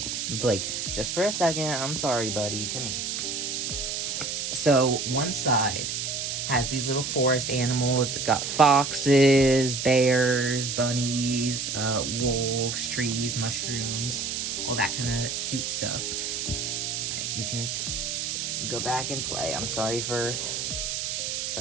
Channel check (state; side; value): noise; right; hiss, 3 dB below the sound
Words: Blake just for a second. I'm sorry, buddy. Come here. So one side has these little forest animals. It's got foxes, bears, bunnies, wolves, trees, mushrooms, all that kind of cute stuff. All right, you can go back and play. I'm sorry for